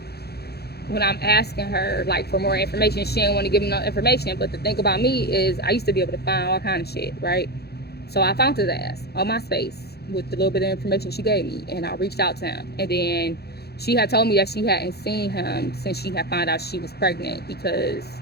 when I'm asking her like for more information, she didn't want to give me no information. But the thing about me is I used to be able to find all kind of shit, right? So I found his ass on MySpace with the little bit of information she gave me, and I reached out to him. And then she had told me that she hadn't seen him since she had found out she was pregnant because,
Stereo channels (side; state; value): right; late; 0.47 ms